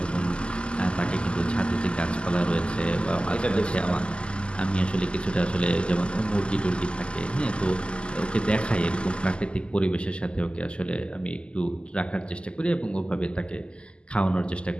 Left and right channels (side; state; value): right; late; 0.052 ms